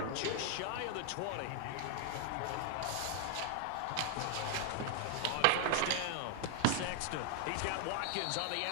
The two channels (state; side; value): different; both; correlation 0.00